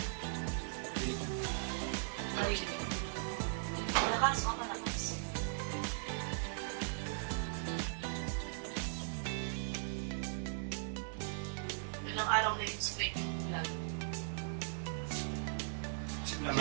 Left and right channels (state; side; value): silent; left; digital silence